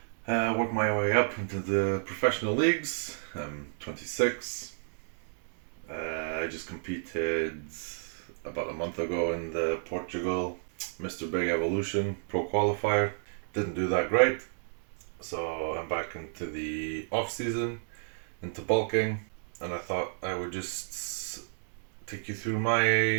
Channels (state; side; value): silent; left; 57 dB below the other